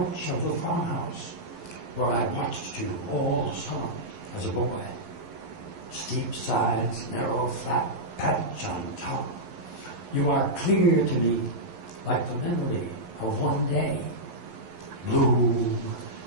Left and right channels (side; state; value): left; late; 11 ms